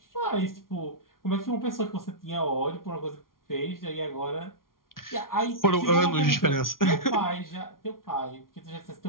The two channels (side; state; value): right; late; 0.91 ms